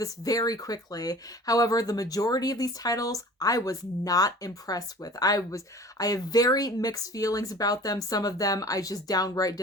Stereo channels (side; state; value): both; normal; correlation 0.43